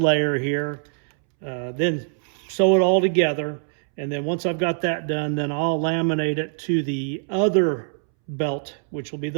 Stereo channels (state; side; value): silent; left; 63 dB below the other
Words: here, then sew it all together. And then once I've got that done, then I'll laminate it to the other belt, which will be